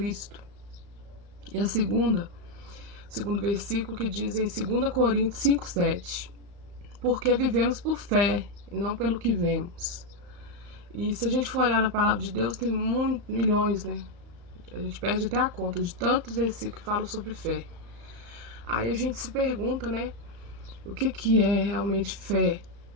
E a segundo versículo que diz em 2 Coríntios 5:7: porque vivemos por fé e não pelo que vemos. E se a gente for olhar na palavra de Deus, tem milhões, né? A gente perde até a conta de tantos versículos que falam sobre fé. Aí a gente se pergunta, né? O que é realmente fé,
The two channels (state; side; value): late; left; 35 ms